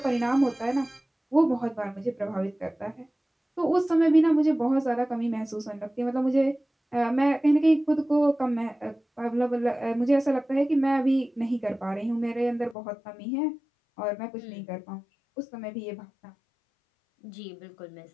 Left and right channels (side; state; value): right; drops out; at 12.8 s